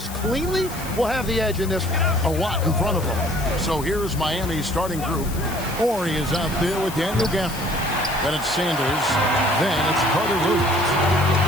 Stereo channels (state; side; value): noise; left; hiss, 13 dB below the sound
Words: cleanly will have the edge in this one. A lot in front of them. So here's Miami's starting group. Horry is out there with Daniel Gafford. Then it's Sanders. Then it's Carter Williams.